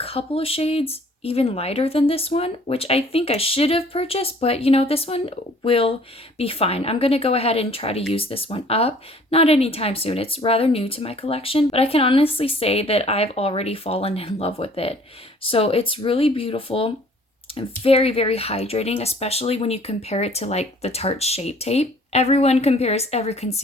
of shades even lighter than this one, which I think I should have purchased, but you know, this one will be fine. I'm gonna go ahead and try to use this one up. Not anytime soon, it's rather new to my collection, but I can honestly say that I've already fallen in love with it. So it's really beautiful and very, very hydrating, especially when you compare it to like the Tarte Shape Tape. Everyone compares every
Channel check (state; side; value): normal; both; correlation 0.55